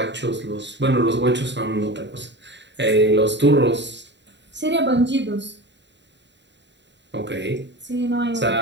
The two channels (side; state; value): left; late; 0.52 ms